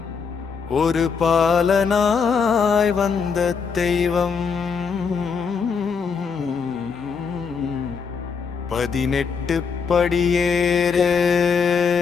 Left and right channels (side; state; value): right; quieter; 5.8 dB